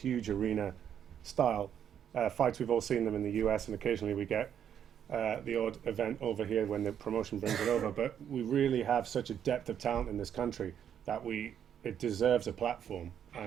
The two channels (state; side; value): quieter; left; 9.1 dB